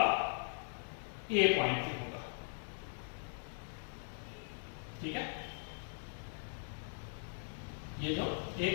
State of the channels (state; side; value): silent; right; digital silence